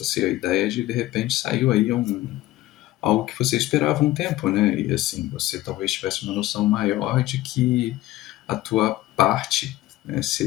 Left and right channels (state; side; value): quieter; right; 16.2 dB